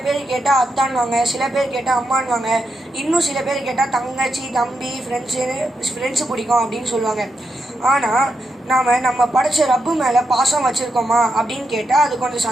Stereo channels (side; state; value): both; normal; correlation 0.84